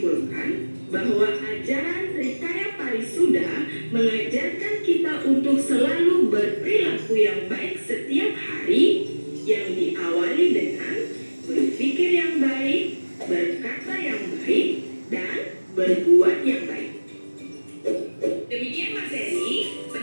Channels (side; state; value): both; inverted; correlation -1.00